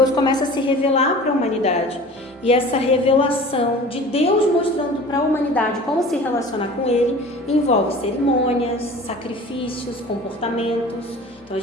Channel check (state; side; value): normal; both; correlation 0.41